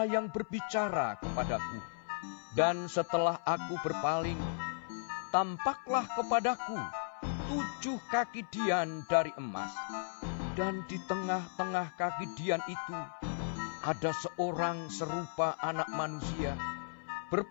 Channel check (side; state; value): right; silent; 54 dB below the other